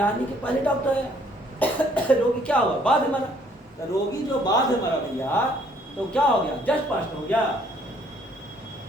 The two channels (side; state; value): both; normal; correlation 0.63